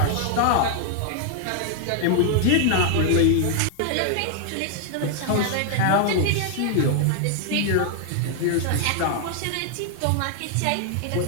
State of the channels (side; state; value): both; different; correlation 0.00